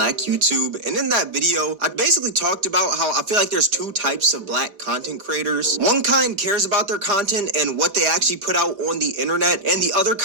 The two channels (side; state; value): left; late; 4.5 ms